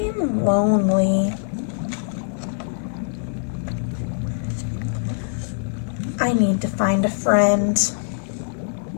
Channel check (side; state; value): right; silent; digital silence